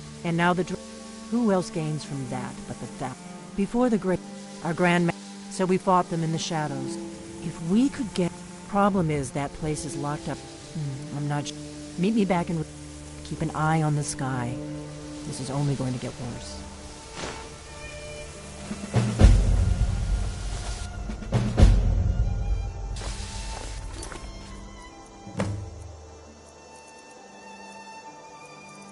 and now the... Who else gains from that but the Thalmor? Before the Great... Our Grand... So we fought them in the shadows. If we could get... Problem is that place is locked up. I'm not... Meet me back in... Keep an eye on the sky. This is only going to get worse.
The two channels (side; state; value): both; identical; correlation 1.00